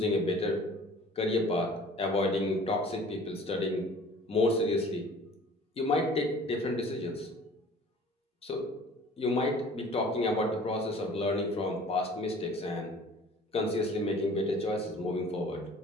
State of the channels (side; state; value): both; normal; correlation 0.48